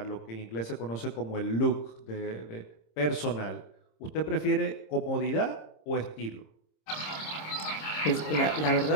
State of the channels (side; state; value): right; late; 26 ms